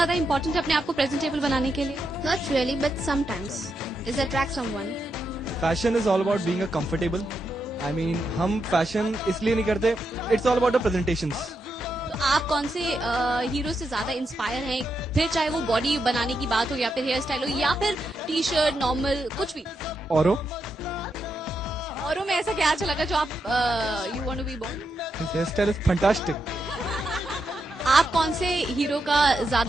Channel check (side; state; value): both; normal; correlation 0.84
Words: इंपॉर्टेंट है अपने आप को प्रेजेंटेबल बनाने के लिए? Not really, but sometimes it attracts someone. Fashion is all about being a comfortable. I mean हम फैशन इसलिए नहीं करते, it's all about the presentations. तो आप कौन से हीरो से ज्यादा इंस्पायर हैं, फिर चाहे वो बॉडी बनाने की बात हो या फिर हेयर स्टाइल हो या फिर टी शर्ट नॉर्मल कुछ भी? औरों में ऐसा क्या अच्छा लगा जो आप you want to be born? His hair style is fantastic. आप कौन से हीरो का